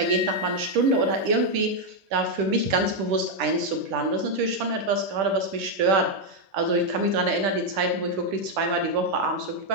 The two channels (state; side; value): late; left; 10 ms